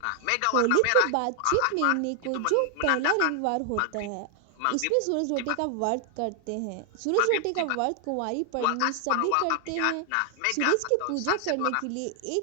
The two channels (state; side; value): different; both; correlation 0.00